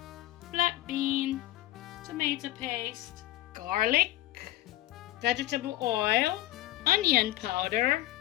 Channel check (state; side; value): quieter; right; 16.2 dB